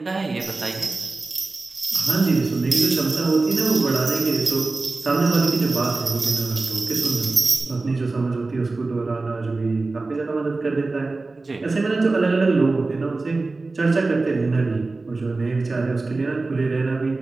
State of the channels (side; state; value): left; quieter; 3.5 dB